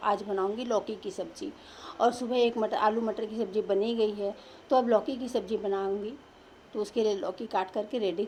आज बनाऊँगी लौकी की सब्ज़ी, और सुबह एक आलू मटर की सब्ज़ी बनी गई है, तो अब लौकी की सब्ज़ी बनाऊँगी। तो उसके लिए लौकी काट करके रेडी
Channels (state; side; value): identical; both; correlation 1.00